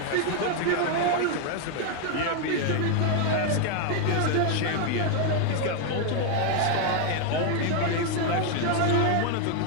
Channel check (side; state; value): both; different; correlation 0.01